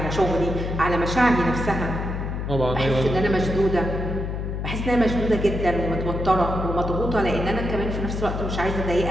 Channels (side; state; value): left; noise; hum, 3 dB below the sound